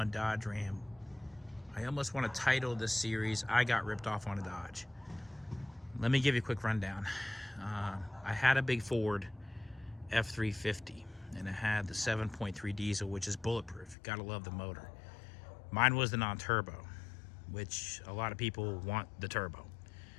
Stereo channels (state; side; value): drops out; right; at 14.0 s